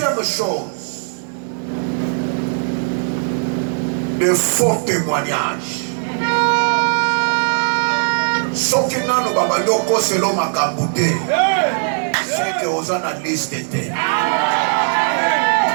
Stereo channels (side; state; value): left; silent; digital silence